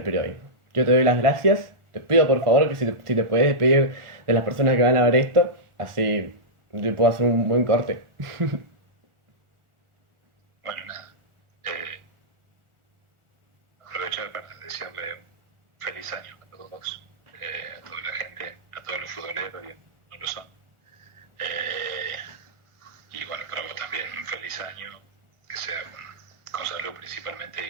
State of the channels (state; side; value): late; left; 1.4 ms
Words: periodismo. Yo te doy las gracias. Te pido por favor que si te puedes despedir de las personas que van a ver esto, así yo puedo hacer un buen corte. Bueno, nada. Aprovechar para desearle un feliz año a todos, a toda la gente, a todos los futboleros, y no lo son. Y bueno, para vos también un feliz año, que sea con salud principalmente